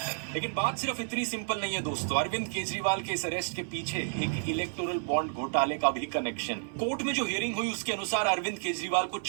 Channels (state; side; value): silent; left; 57 dB below the other